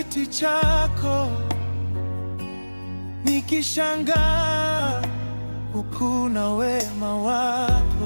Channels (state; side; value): inverted; both; correlation -1.00